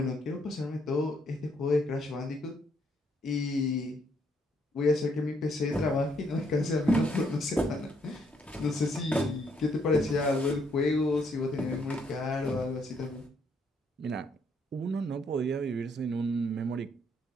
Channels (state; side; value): normal; both; correlation 0.71